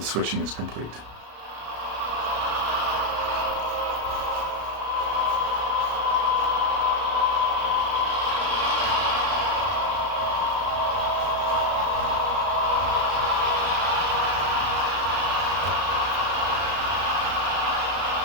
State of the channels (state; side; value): late; left; 33 ms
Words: switching is complete.